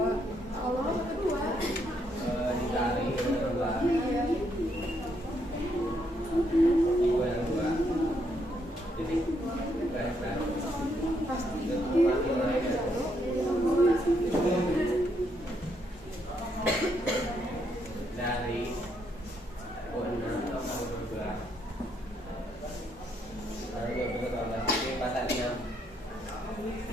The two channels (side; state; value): both; normal; correlation 0.75